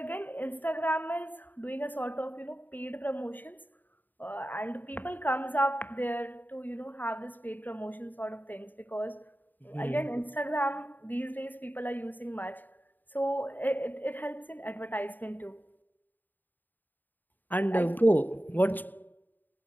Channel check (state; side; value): late; right; 0.088 ms